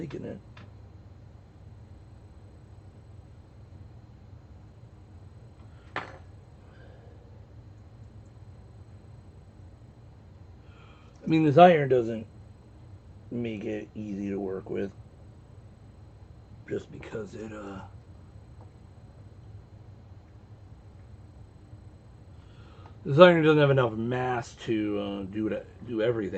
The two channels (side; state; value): both; identical; correlation 1.00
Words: it. I mean, this iron doesn't make it easy to work with, just because it this iron doesn't have enough mass to do